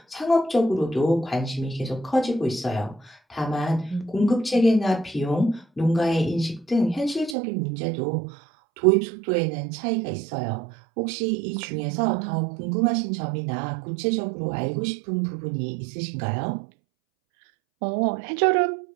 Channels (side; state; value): left; drops out; at 7.4 s